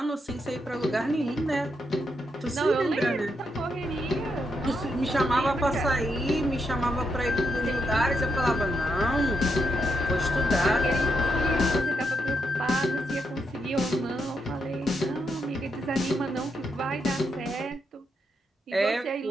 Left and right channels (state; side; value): normal; both; correlation 0.81